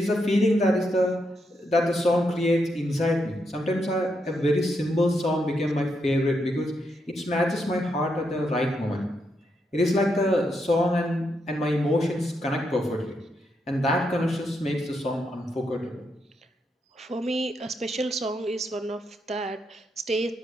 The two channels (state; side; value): normal; both; correlation 0.81